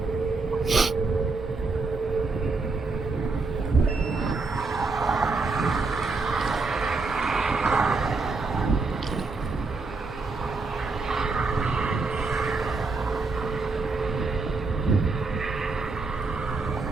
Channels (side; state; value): left; quieter; 3.9 dB